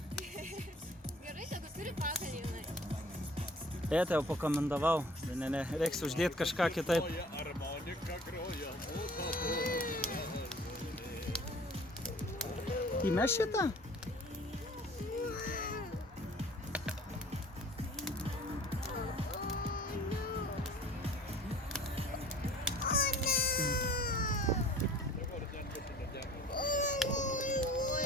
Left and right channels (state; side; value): normal; both; correlation 0.49